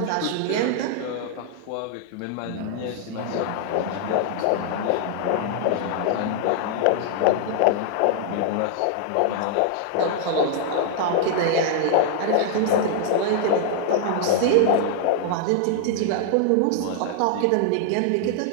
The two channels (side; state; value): both; different; correlation 0.00